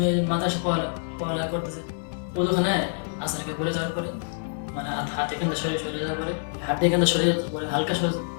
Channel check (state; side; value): silent; right; 59 dB below the other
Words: মাদ্রাসা পড়ালেখা করতেছি। ওখানে আসারকে বলে যাওয়ার পরে মানে হাত এখান থেকে সরে যাওয়ার পরে হাত এখান থেকে সরে যাওয়ার পরে হালকা সরে